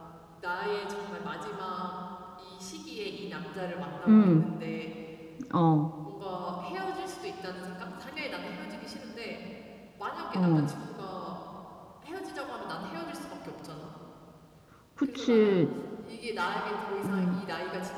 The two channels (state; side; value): identical; both; correlation 1.00